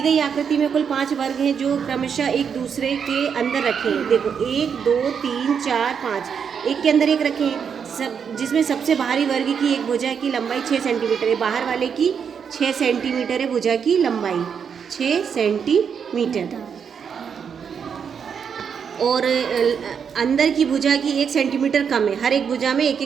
गई आकृति में कुल 5 वर्ग हैं जो क्रमशः एक दूसरे के अंदर रखें। देखो 1 2 3 4 5, एक के अंदर एक रखें, जिसमें सबसे बाहरी वर्ग की एक भुजा की लंबाई 6 सेंटीमीटर है, बाहर वाले की 6 सेंटीमीटर है भुजा की लंबाई 6 सेंटीमीटर, और अंदर की भुजा की 1 सेंटीमीटर कम है। हर एक भुजा में 1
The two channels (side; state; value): left; quieter; 7.0 dB